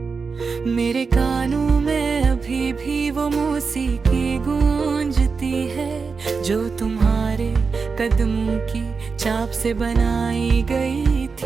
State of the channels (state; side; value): quieter; left; 4.9 dB